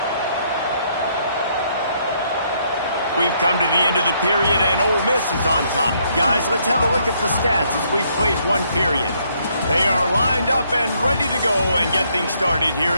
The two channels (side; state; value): both; inverted; correlation -0.70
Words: We've come to the end of the period, and Ole Miss is on top. Guys, let's have a look at the stats as we've played one period. They are lined up and ready to go and get things started here